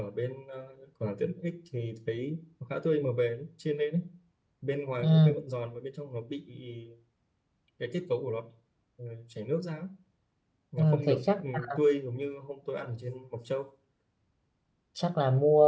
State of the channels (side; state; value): both; identical; correlation 1.00